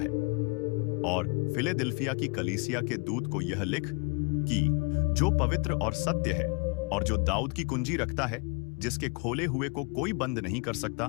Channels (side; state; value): right; quieter; 31.4 dB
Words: और फिलेदिल्फिया की कलीसिया के दूत को यह लिख कि जो पवित्र और सत्य है, और जो दाऊद की कुंजी रखता है, जिसके खोले हुए को कोई बंद नहीं कर सकता